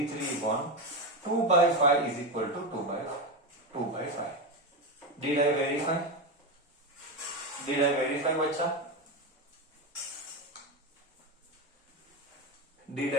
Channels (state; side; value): normal; both; correlation 0.15